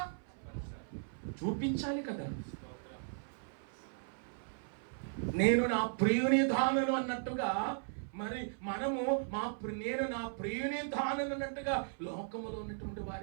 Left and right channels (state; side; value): silent; left; 53 dB below the other